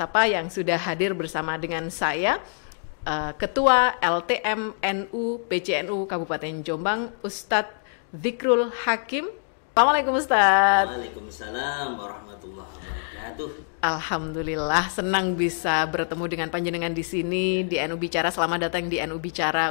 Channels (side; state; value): right; silent; digital silence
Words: yang sudah hadir bersama dengan saya, Ketua LTMNU PCNU Kabupaten Jombang, Ustadz Dzikrul Hakim. Assalamualaikum Ustadz. Waalaikumsalam warahmatullahi wabarakatuh. Alhamdulillah, senang bisa bertemu dengan panjenengan di sini di NU Bicara. Selamat datang di NU Bicara,